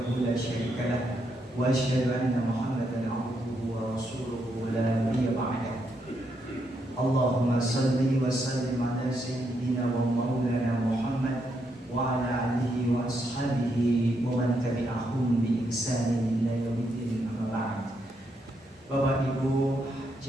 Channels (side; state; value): both; normal; correlation 0.79